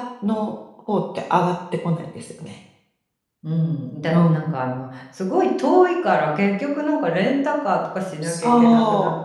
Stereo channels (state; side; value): identical; both; correlation 1.00